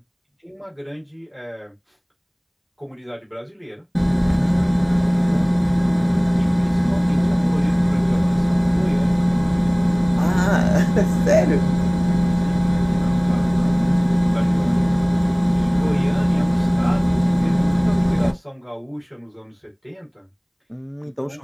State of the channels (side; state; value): both; identical; correlation 1.00